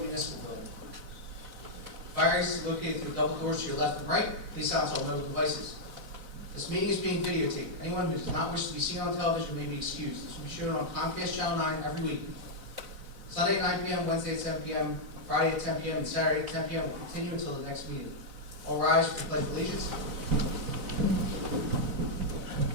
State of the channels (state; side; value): late; left; 4.0 ms